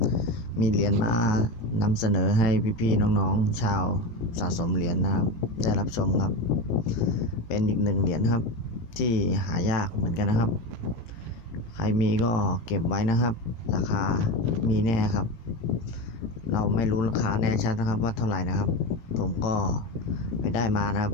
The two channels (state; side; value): late; right; 18 ms